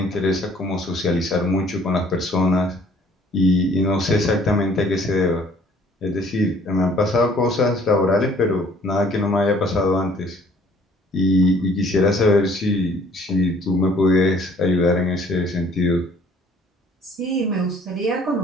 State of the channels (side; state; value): both; normal; correlation 0.57